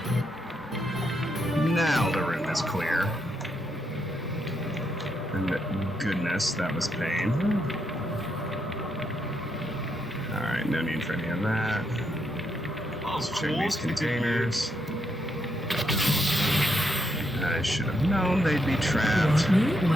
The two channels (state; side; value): normal; both; correlation 0.79